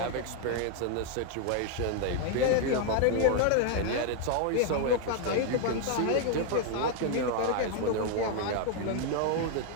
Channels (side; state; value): both; different; correlation 0.00